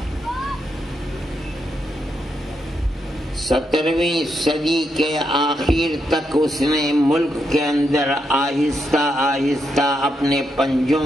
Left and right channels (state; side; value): normal; both; correlation 0.81